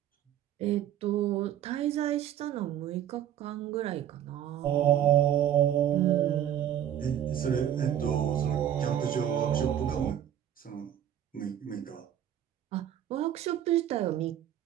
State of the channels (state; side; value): quieter; left; 10.6 dB